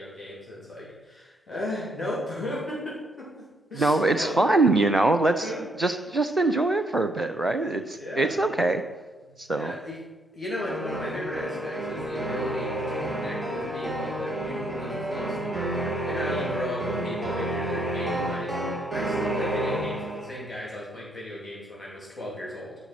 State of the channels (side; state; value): both; normal; correlation 0.72